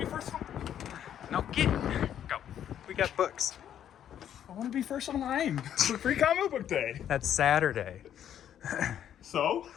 be first. No, go. We got books. I want to be first online for Free Comic Book Day. That's Saturday. So?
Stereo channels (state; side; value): quieter; right; 10.0 dB